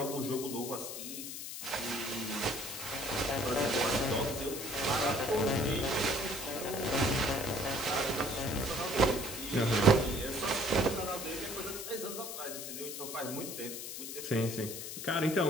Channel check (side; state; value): left; noise; hiss, 7 dB below the sound